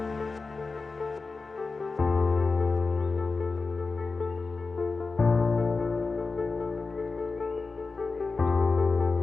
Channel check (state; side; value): quieter; right; 4.1 dB